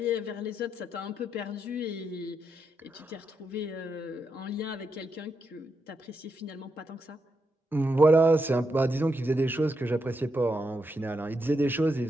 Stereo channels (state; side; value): normal; both; correlation 0.83